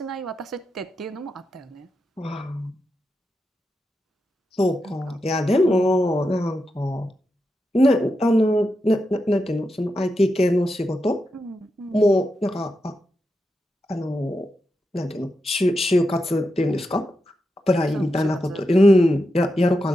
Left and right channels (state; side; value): normal; both; correlation 0.87